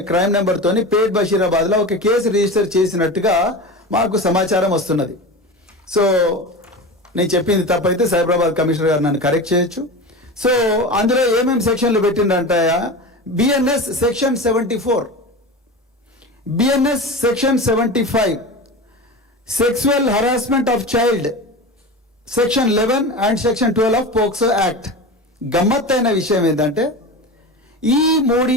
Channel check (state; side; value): normal; both; correlation 0.28